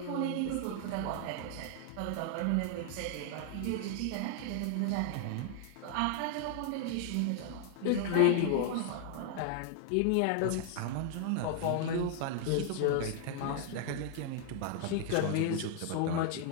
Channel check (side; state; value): both; different; correlation 0.00